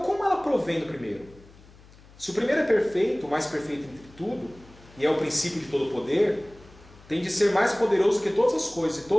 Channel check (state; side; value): noise; left; hum, 24 dB below the sound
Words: como ela provém do primeiro? Se o primeiro é perfeito, o mais perfeito entre tudo, e é o princípio de todo poder, tem de ser mais poderoso que todas as coisas, e